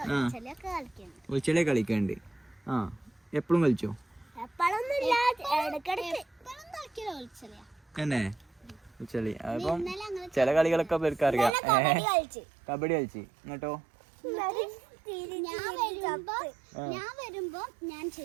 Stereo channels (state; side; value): drops out; left; at 11.6 s